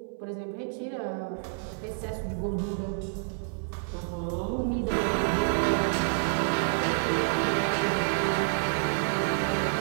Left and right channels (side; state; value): left; silent; 58 dB below the other